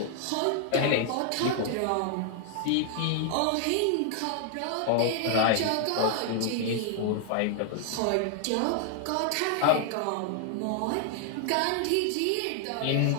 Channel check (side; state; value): both; different; correlation 0.00